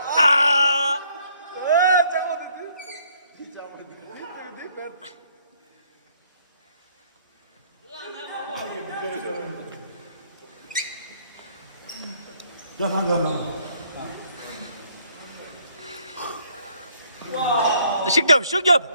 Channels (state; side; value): inverted; both; correlation -0.65